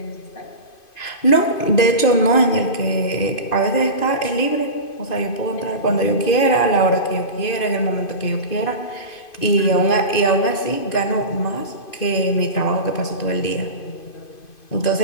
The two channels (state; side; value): late; right; 2.5 ms